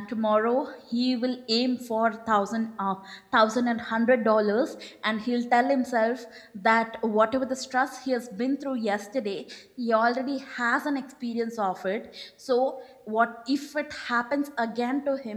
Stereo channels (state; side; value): identical; both; correlation 1.00